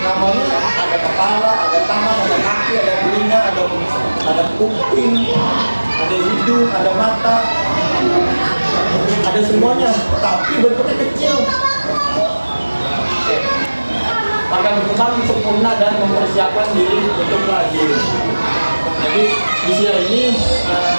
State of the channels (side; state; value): both; inverted; correlation -1.00